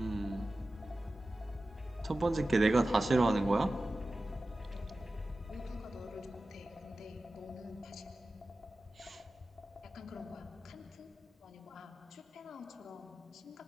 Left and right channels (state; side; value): normal; both; correlation 0.95